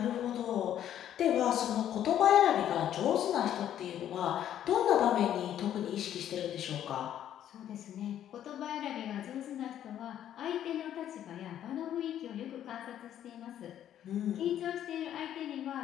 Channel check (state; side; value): quieter; right; 10.8 dB